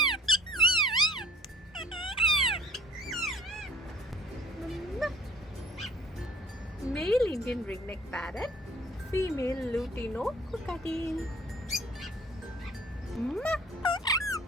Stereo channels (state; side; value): normal; both; correlation 0.52